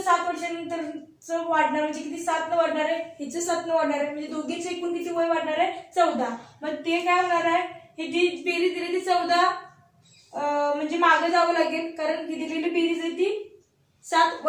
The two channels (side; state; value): both; identical; correlation 1.00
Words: 7 वर्षानंतरचं वाढणार म्हणजे किती 7 न वाढणार आहे, हिचं 7 न वाढणार आहे. म्हणजे दोघींचं एकूण किती वय वाढणार आहे 14. मग ते काय होणार आहे ही जी बेरीज दिली ती 14 म्हणजे मागं जावं लागेल कारण ही दिलेली बेरीज आहे ती 7